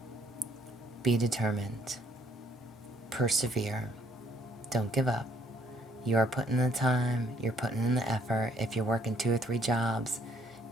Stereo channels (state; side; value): normal; both; correlation 0.66